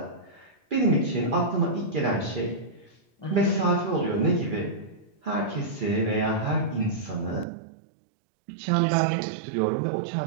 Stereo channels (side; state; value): left; drops out; at 7.5 s